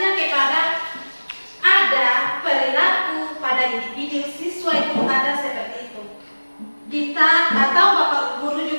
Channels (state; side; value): inverted; both; correlation -1.00